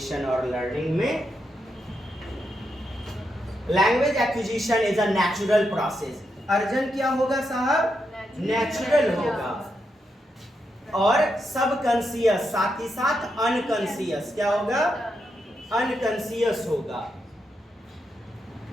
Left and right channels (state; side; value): normal; both; correlation 0.83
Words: और लर्निंग में। Language acquisition is a natural process. अर्जन क्या होगा साहब? नेचुरल होगा, और सब कॉन्शियस, साथ ही साथ अनकॉन्शियस क्या होगा, अनकॉन्शियस होगा।